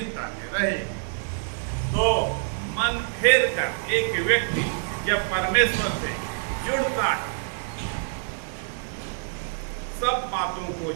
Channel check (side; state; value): left; silent; digital silence